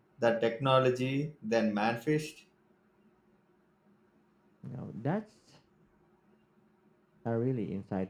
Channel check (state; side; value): identical; both; correlation 1.00